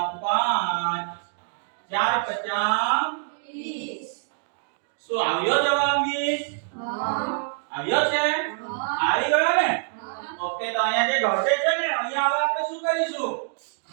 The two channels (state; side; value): silent; left; digital silence